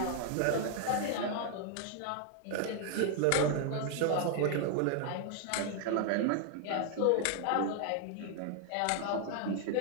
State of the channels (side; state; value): both; different; correlation 0.00